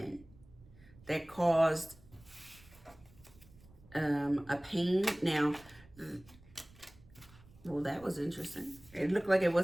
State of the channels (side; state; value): right; noise; rumble, 24 dB below the sound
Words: that caused a pain. Now, well, that was interesting. It looked like it